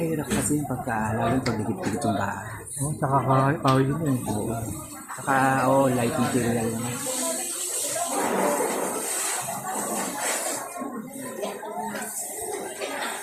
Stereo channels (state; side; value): identical; both; correlation 1.00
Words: kasi yung pagkaalala pag dikit-dikit yung bahay. Oo, nakakawin yun eh. Oo. Saka, light material naman.